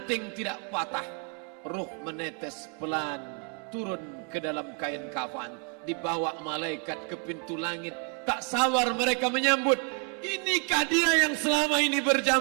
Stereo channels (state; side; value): quieter; left; 39.8 dB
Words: tidak patah. Ruh menetes pelan turun ke dalam kain kafan, dibawa malaikat ke pintu langit. Tak sabar mereka menyambut. Inikah dia yang selama ini